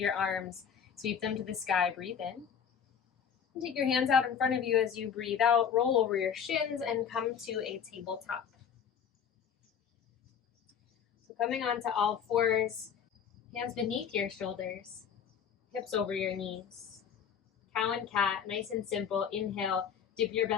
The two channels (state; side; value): quieter; right; 7.6 dB